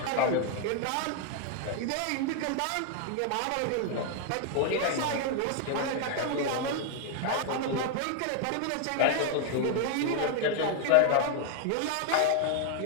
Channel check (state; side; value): different; both; correlation 0.00